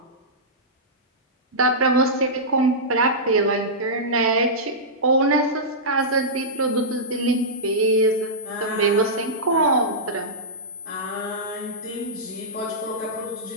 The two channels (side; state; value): both; normal; correlation -0.14